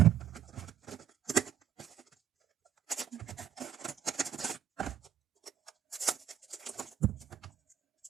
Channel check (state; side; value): quieter; left; 9.6 dB